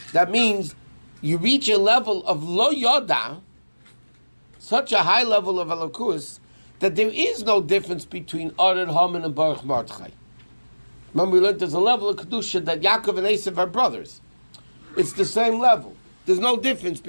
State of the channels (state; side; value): inverted; both; correlation -1.00